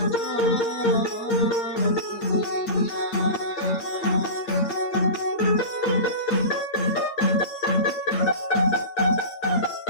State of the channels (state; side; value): late; right; 8.6 ms